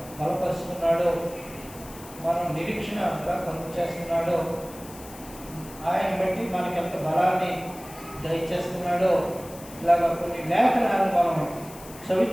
బలపరుస్తున్నాడో, మనం నిరీక్షణగా కలుగు చేస్తున్నాడో, ఆయన బట్టి మనకి ఎంత బలాన్ని దయచేస్తున్నాడో, ఇలాగ కొన్ని లేఖనాలు మనం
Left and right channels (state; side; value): noise; left; hiss, 18 dB below the sound